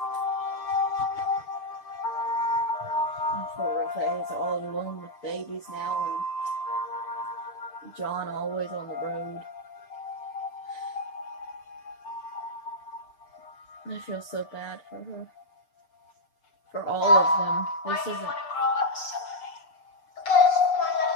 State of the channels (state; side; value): late; right; 6.7 ms